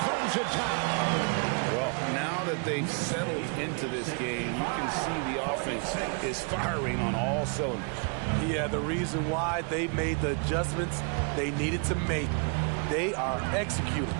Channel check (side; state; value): left; quieter; 38.1 dB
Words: throws it down. Well, now that they've settled into this game, you can see the offense is firing on all cylinders. Yeah, the reason why they made the adjustments they needed to make. They are executing.